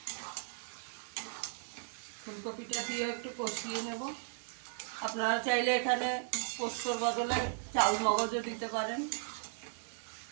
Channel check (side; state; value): left; silent; digital silence